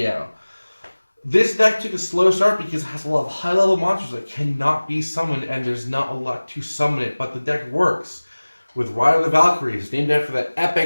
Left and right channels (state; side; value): inverted; both; correlation -1.00